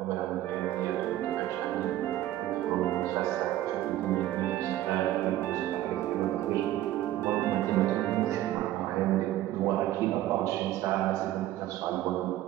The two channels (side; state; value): left; quieter; 14.1 dB